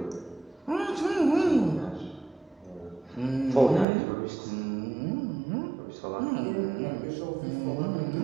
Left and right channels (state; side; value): drops out; left; at 3.9 s